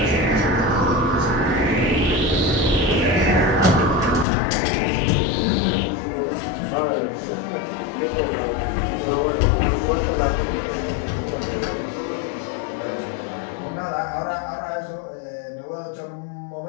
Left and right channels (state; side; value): drops out; right; at 4.2 s